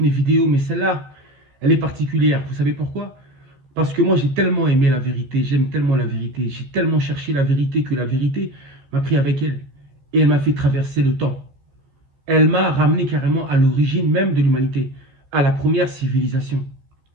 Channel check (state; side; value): late; left; 14 ms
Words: mes vidéos, mais celle-là, elle est particulière. Vous savez pourquoi? Parce que moi, j'ai tellement aimé la vérité, j'aime tellement la vérité, j'ai tellement cherché la vérité que la vérité m'a pris avec elle. Et elle m'a fait traverser le temps. Elle m'a ramené carrément à l'origine même de l'humanité, à la première civilisation.